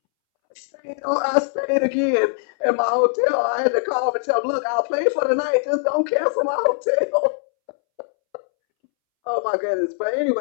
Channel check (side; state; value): right; silent; 65 dB below the other